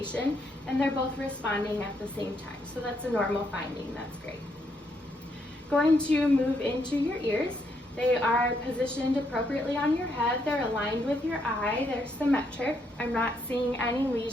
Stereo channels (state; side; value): normal; both; correlation 0.75